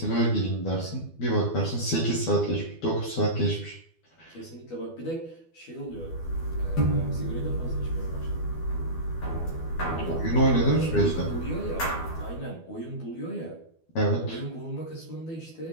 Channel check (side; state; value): right; late; 12 ms